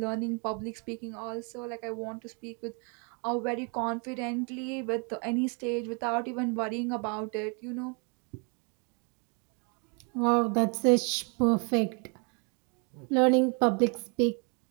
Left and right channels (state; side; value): quieter; left; 35.6 dB